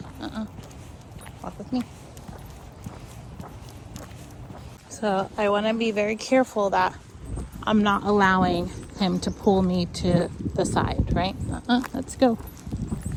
Walk with me. So I want to be very careful that I'm not allowing him to pull me to the side, right? Let's go.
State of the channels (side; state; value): both; identical; correlation 1.00